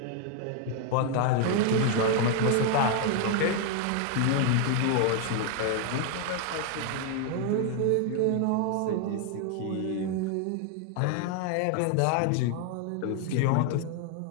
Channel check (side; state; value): both; different; correlation 0.00